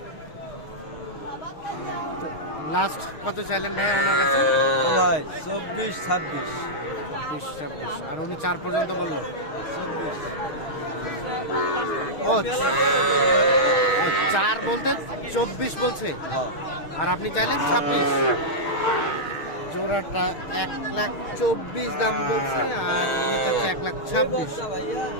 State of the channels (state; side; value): late; right; 6.4 ms